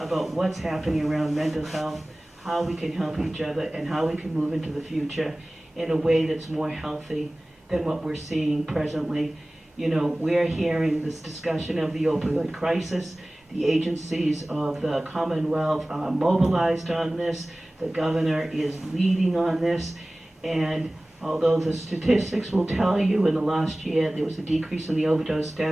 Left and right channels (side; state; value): both; normal; correlation 0.98